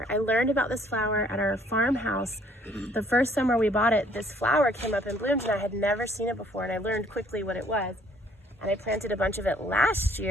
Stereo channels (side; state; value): both; normal; correlation 0.61